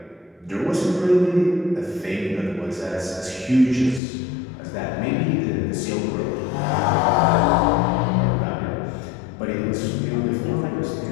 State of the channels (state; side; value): drops out; right; at 4.0 s